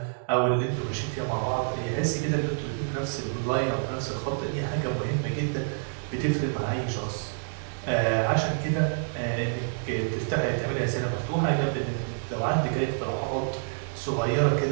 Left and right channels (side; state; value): left; silent; digital silence